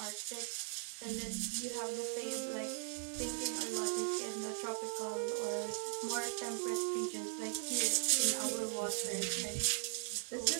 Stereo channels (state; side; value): silent; left; 52 dB below the other